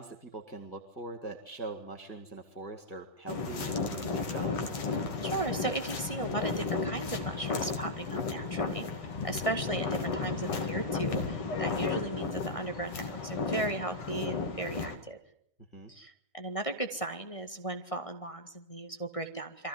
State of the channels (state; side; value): late; right; 1.6 ms